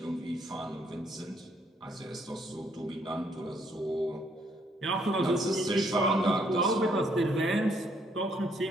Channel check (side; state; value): both; normal; correlation 0.69